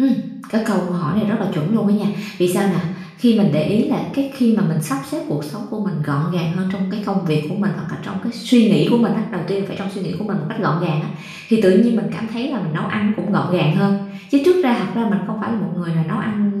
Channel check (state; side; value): identical; both; correlation 1.00